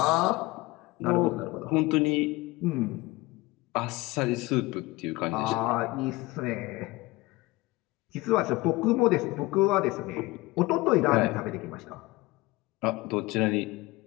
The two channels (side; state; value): right; quieter; 21.2 dB